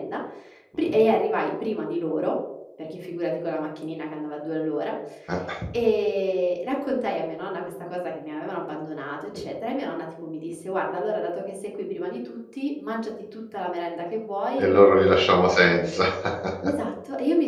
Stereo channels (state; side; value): identical; both; correlation 1.00